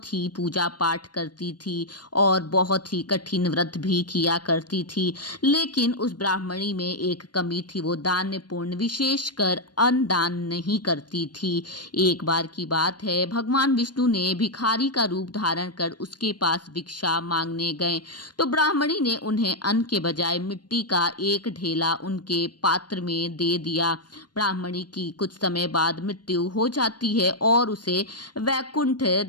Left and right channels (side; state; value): right; late; 0.70 ms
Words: ही पूजा पाठ करती थी और बहुत ही कठिन व्रत भी किया करती थी। लेकिन उस ब्राह्मणी में एक कमी थी, वो दान्यपूर्ण विशेषकर अन्न दान नहीं करती थी। एक बार की बात है, भगवान विष्णु ने भिखारी का रूप धारण कर उसके पास भिक्षा मांगने गए तो ब्राह्मणी ने उन्हें अन्न के बजाय मिट्टी का एक ढेला उनके पात्र में दे दिया। ब्राह्मणी की कुछ समय बाद मृत्यु हो जाती है और उसे वैकुंठ